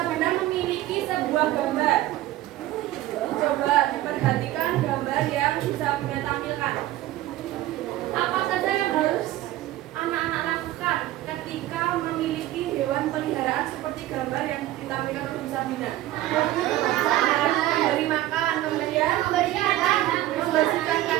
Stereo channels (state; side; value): quieter; left; 15.1 dB